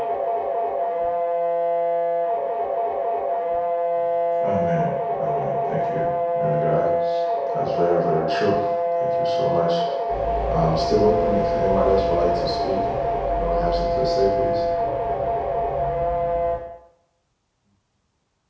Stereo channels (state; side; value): identical; both; correlation 1.00